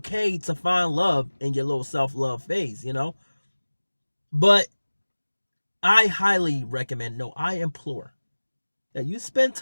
to find love in your little self-love phase, you know? But I highly recommend, no, I implore that you spend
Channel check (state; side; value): inverted; both; correlation -1.00